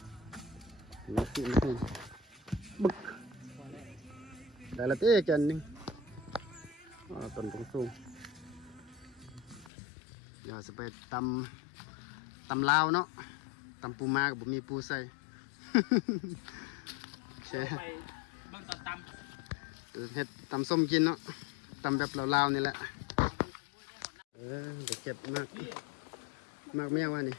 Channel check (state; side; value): drops out; right; at 9.7 s